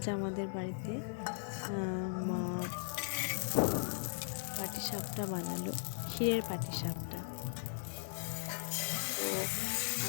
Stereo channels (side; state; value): right; silent; digital silence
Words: আমাদের বাড়িতে মা পাটিসাপটা বানালো, ক্ষীরের পাটিসাপটা। তো